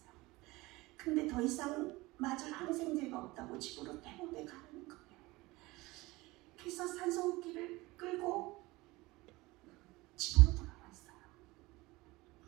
근데 더 이상 맞을 항생제가 없다고 집으로 퇴원해 가는 거예요. 그래서 산소호흡기를 끌고 집으로 돌아왔어요.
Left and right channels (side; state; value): left; quieter; 21.2 dB